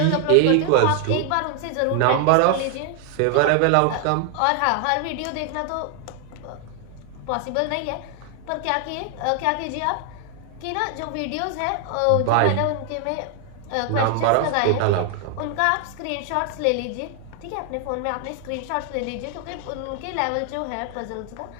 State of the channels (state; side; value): different; both; correlation 0.00